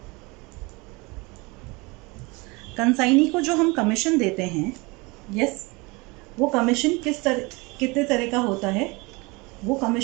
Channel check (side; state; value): left; quieter; 25.9 dB